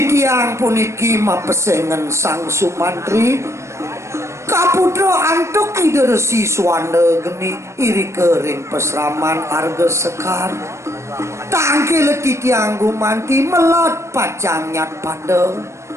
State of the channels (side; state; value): left; late; 0.14 ms